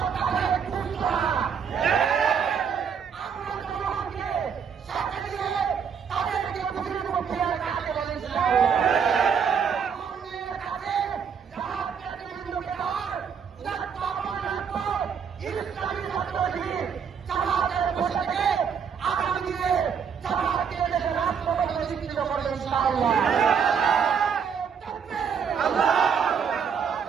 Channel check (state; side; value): quieter; left; 7.0 dB